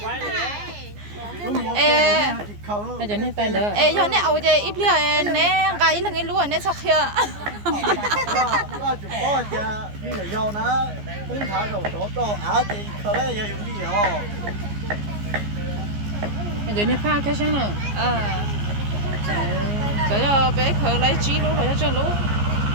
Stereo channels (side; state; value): left; late; 14 ms